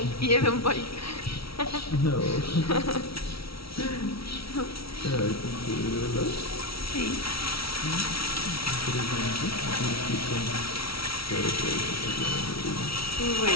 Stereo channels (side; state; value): right; late; 0.75 ms